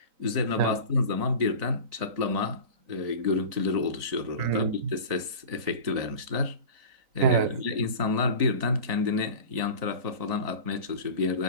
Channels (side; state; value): left; late; 3.9 ms